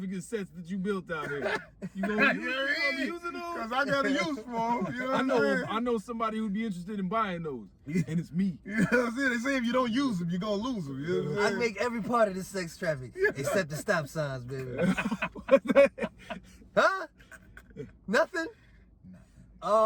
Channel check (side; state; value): both; identical; correlation 1.00